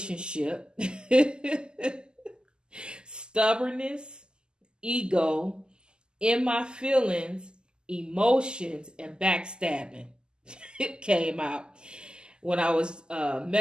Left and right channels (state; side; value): late; left; 0.047 ms